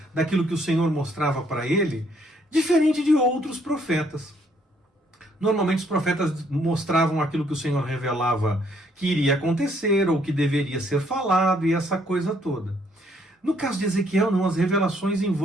daquilo que o Senhor mostrava para ele, diferente de outros profetas. Normalmente os profetas mostravam aquilo que o Senhor revelava que iria acontecer ou que deveria ser falado e essa coisa toda. No caso de Ezequiel, não, as revelações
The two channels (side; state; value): both; normal; correlation 0.68